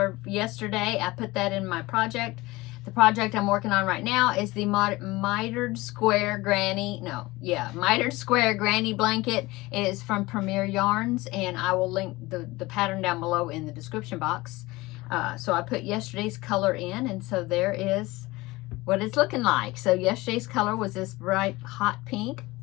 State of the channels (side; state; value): right; quieter; 20.8 dB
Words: yesterday. I put that in my project. The project I'm working on right now is the mitered square granny blanket. It is from Premier Yarns, and I will link the pattern down below in the description box. So I put yesterday's color in, and so there is what it's looking like. So yesterday's color was this bright hot pink,